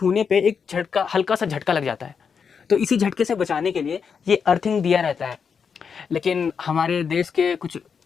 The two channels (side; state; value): right; quieter; 6.3 dB